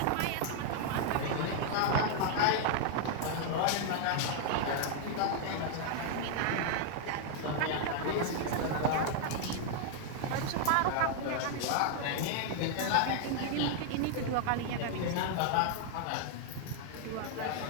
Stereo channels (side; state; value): both; different; correlation 0.00